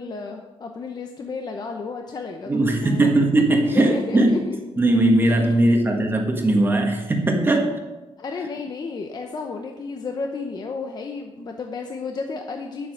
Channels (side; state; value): both; normal; correlation 0.81